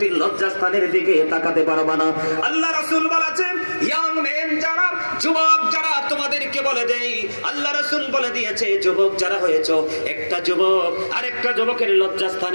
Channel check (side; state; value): both; inverted; correlation -1.00